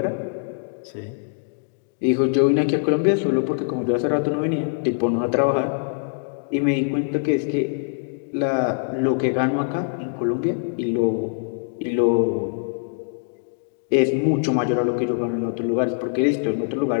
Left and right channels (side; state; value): right; silent; digital silence